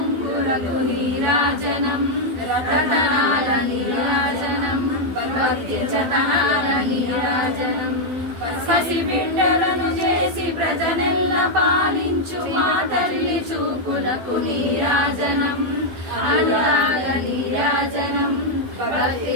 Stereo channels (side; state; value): left; late; 12 ms